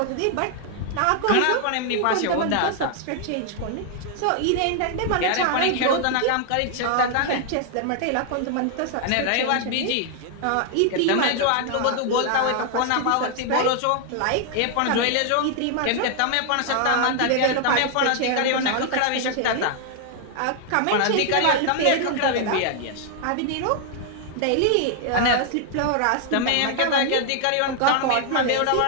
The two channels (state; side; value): different; both; correlation 0.00